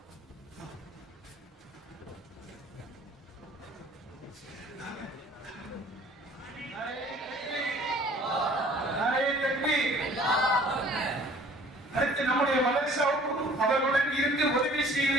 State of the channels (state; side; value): normal; both; correlation 0.52